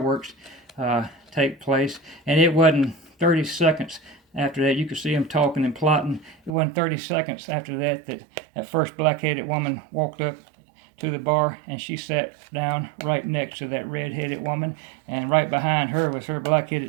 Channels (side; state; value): left; drops out; at 6.5 s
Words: take place. And it wasn't 30 seconds after that, you could see them talking and plotting. It wasn't 30 seconds after that that first black-headed woman walked up to the bar, and she sat down right next to that red-headed woman, and right behind her was her